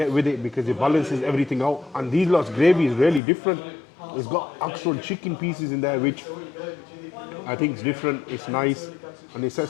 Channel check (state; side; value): drops out; right; at 3.2 s